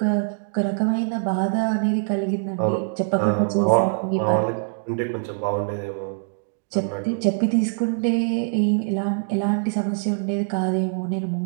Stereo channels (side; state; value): left; silent; digital silence